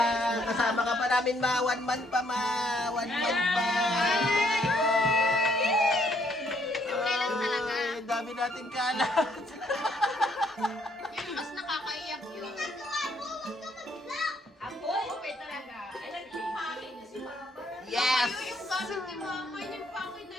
Kasama ka pa namin, ma. 1 month pa, ma. 1 month pa. Kailan talaga? Ay, dami natin kalat. Yun, mas nakakaiyak yun. Ako? Okay talaga. Alam yung pangin niya si Mama. Yes! Yung gamit ni mama, yung pakit na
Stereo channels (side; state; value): both; normal; correlation 0.68